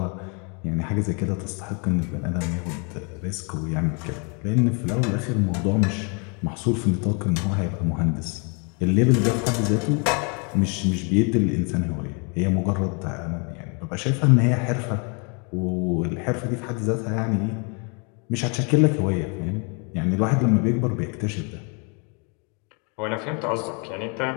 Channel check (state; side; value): quieter; right; 35.1 dB